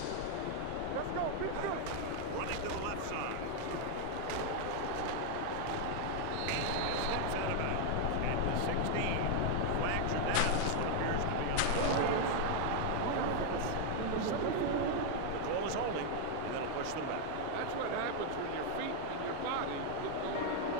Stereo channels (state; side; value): different; both; correlation 0.00